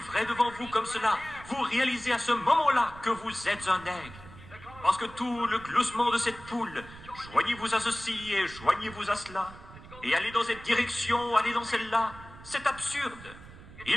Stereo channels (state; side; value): noise; right; rumble, 18 dB below the sound